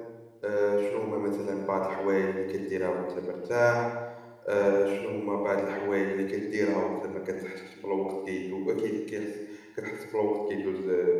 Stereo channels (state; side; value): identical; both; correlation 1.00